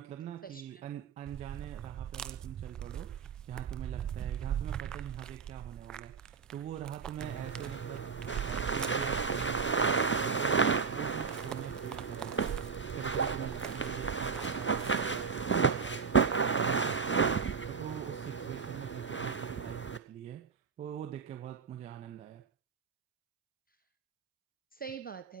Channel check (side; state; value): left; quieter; 5.7 dB